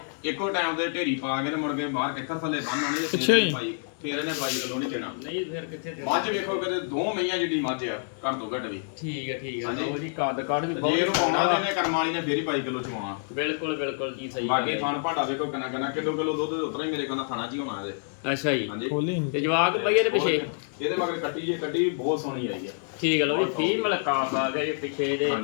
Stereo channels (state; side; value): silent; right; digital silence